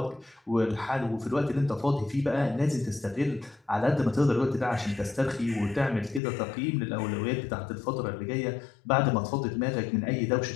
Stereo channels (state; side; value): drops out; right; at 6.2 s